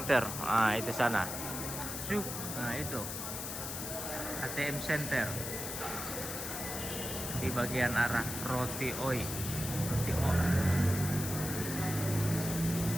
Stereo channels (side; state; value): left; noise; hiss, 5 dB below the sound